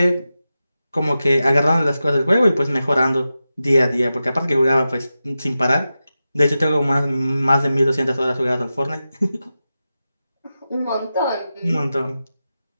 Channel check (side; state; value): both; inverted; correlation -0.92